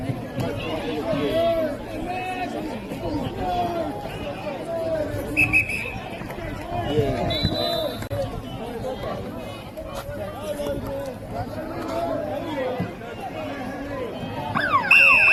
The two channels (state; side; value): identical; both; correlation 1.00